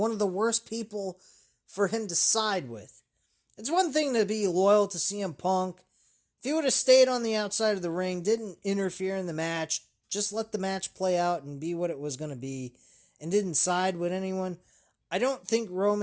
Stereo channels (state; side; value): identical; both; correlation 1.00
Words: of the worst people for him to side with. It's one thing to be loyal to CM Punk. If he would have stayed on the outside of the ring, didn't interfere in the match, just let the match play out and be what it was going to be, and didn't side with anyone, I don't think